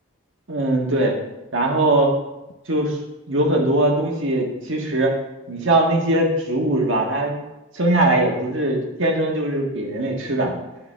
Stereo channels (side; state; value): both; normal; correlation 0.12